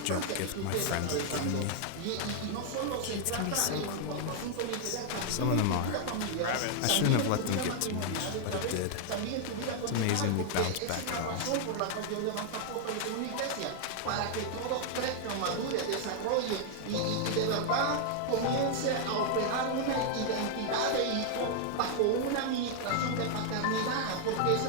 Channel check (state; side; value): different; both; correlation 0.00